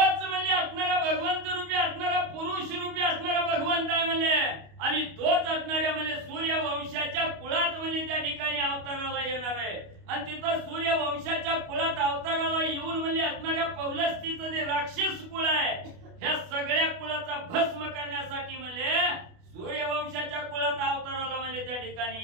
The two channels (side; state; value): left; late; 29 ms